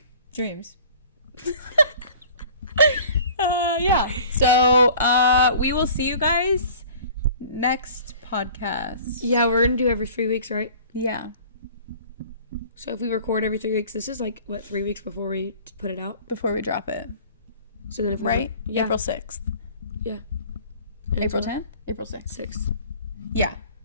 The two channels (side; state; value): both; inverted; correlation -0.46